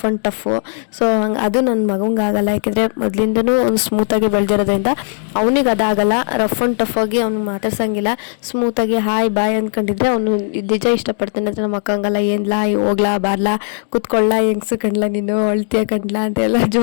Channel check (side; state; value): right; silent; digital silence